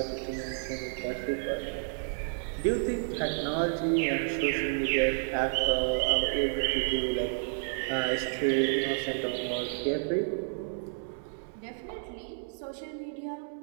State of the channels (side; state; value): left; silent; digital silence